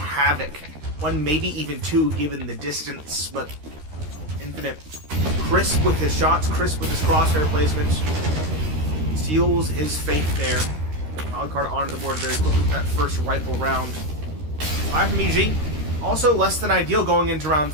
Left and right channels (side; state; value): left; late; 13 ms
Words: One, maybe even two, given the distance, but Infinite, crisp with his shots, crisp with his crosshair placements, seals his fate there. Wildcard onto the board very quickly with that first rifle round. 5 from EG, also less than ideal going into round